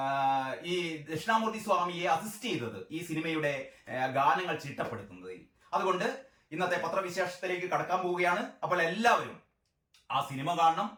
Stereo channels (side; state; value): both; identical; correlation 1.00